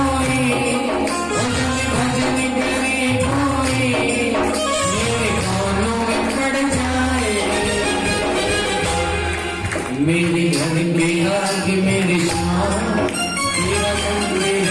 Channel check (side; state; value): both; identical; correlation 1.00